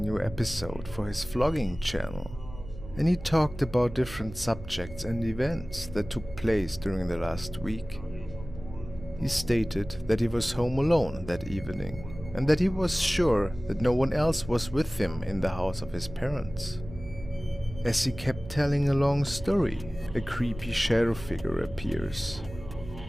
episode for his vlogging channel, and he talked about different subjects and events that took place during the last week. He stated that he was home alone that evening, and that he was sure that no one else was with him in the house of his parents. As he kept telling a long story, a creepy shadow figure appears.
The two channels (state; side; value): noise; right; hum, 14 dB below the sound